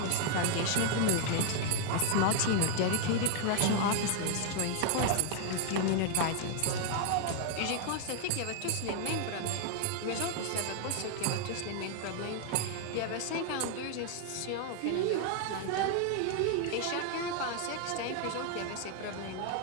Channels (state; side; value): different; both; correlation 0.00